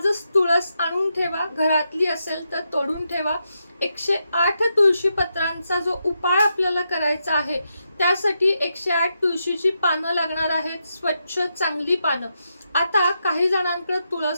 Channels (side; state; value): both; inverted; correlation -0.84